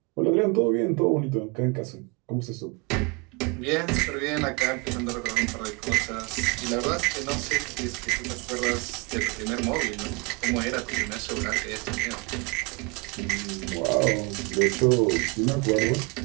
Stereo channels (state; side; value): quieter; left; 29.0 dB